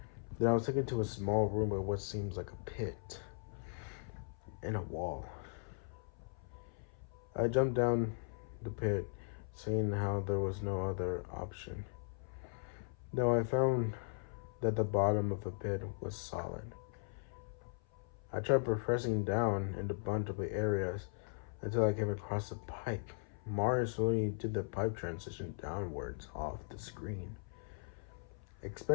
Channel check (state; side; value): silent; right; 52 dB below the other